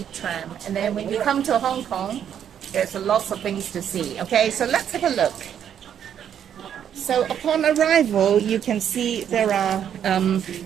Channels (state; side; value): quieter; left; 9.2 dB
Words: Tram, and then when you come to Hong Kong, there's lots of things to see. Okay, so let's have a look. So upon arrival, you can see there are